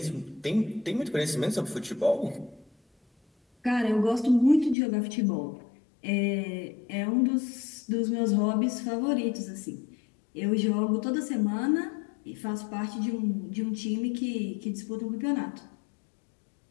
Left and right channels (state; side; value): drops out; right; at 4.8 s